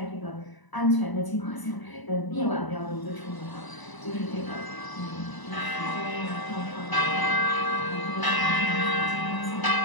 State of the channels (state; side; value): late; right; 1.0 ms